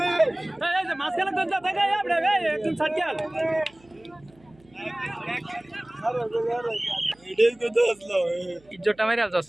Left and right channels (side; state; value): right; noise; hum, 29 dB below the sound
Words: মাঝখানে দেখা একদম সার্কেল ইজ্জতটা মেরে আলছস